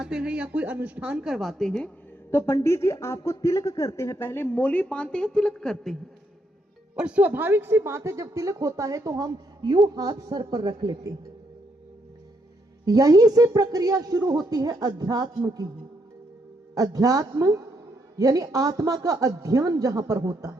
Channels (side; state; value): both; normal; correlation 0.76